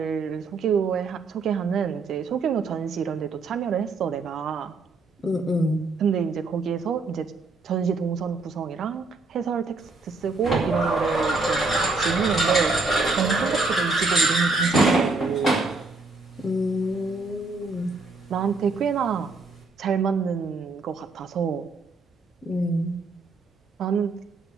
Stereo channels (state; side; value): quieter; left; 3.7 dB